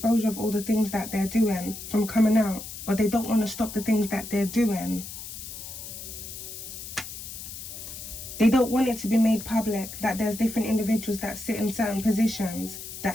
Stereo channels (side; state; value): left; noise; hiss, 10 dB below the sound